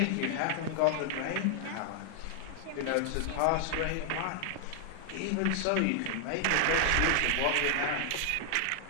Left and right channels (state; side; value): different; both; correlation 0.00